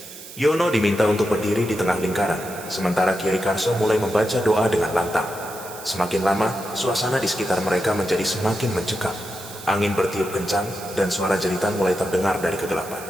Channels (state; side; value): noise; right; hiss, 15 dB below the sound